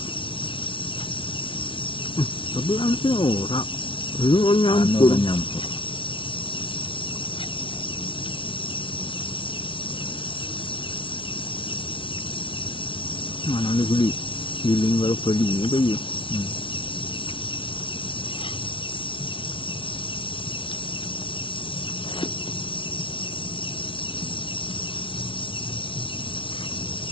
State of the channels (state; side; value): late; right; 0.25 ms